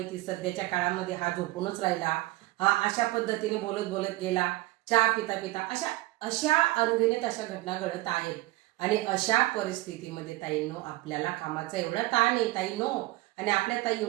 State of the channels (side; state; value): left; quieter; 19.6 dB